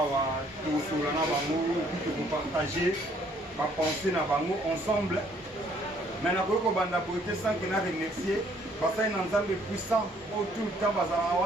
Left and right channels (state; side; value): normal; both; correlation 0.63